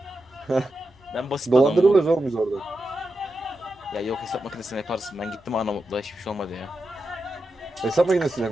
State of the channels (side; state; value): both; normal; correlation 0.89